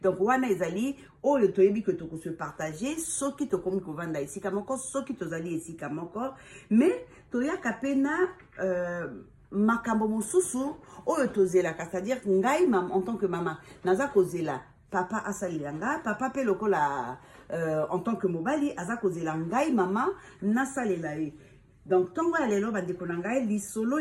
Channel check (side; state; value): both; identical; correlation 1.00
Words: donc wana ezali oyo toyebi que toko se partager soki tokomi kovanda esika moko soki tozali esika moko, mais toyaka pena makambo mosusu oyo tozelaka, c'est-à-dire ngai mam en tant que maman naza kozela papa asalilanga papa pe lokola en tant que mobali aza kozela ngai mama nasalela ye. Donc tongo ya lelo bandeko na ngai lisolo